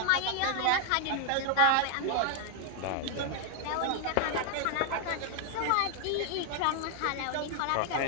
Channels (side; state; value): both; different; correlation 0.00